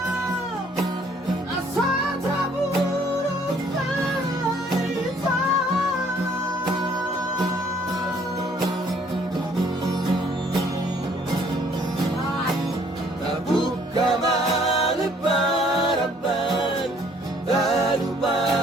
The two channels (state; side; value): normal; both; correlation 0.61